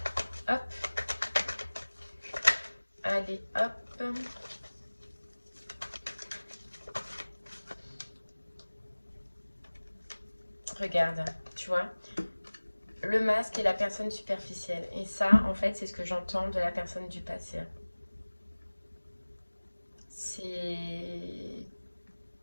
Hop. Allez, hop. Regarde, tu vois, le masque et la personne superficielle. Et ça, en fait, c'est ce que j'entends de la personne du passé. C'est...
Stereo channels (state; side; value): inverted; both; correlation -1.00